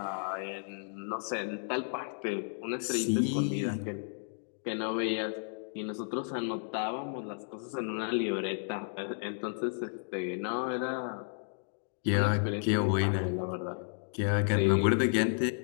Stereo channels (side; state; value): right; silent; digital silence